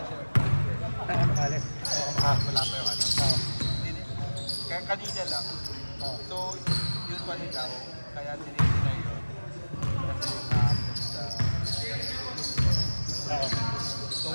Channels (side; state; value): both; inverted; correlation -1.00